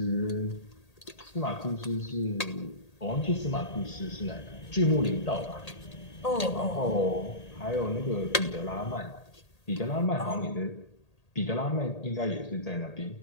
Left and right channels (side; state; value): right; late; 1.8 ms